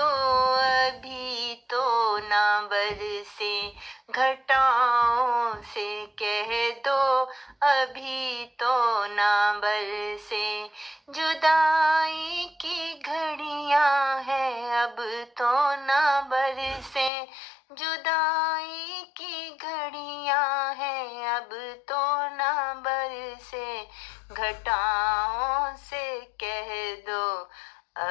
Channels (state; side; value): drops out; right; at 17.1 s